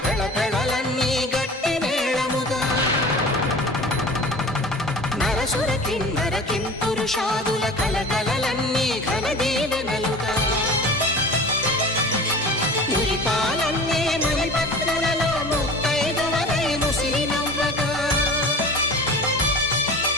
పెళపెళలన్నీ గట్టి మేళముగా నరసుర కిన్నర కింపురుషాదుల కలకలలన్నీ ఘన దీవెనలుగా మురిపాలన్నీ మణిపత్రులలో ముత్తైదువలై ముసిరి నవ్వగా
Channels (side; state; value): both; normal; correlation 0.38